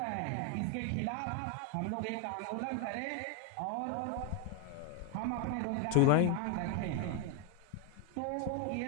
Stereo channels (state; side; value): different; both; correlation 0.01